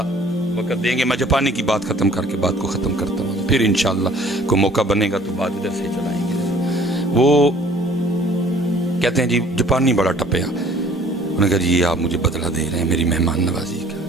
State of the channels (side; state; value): both; normal; correlation 0.53